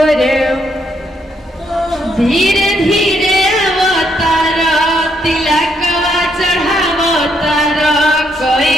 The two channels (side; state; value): both; normal; correlation 0.74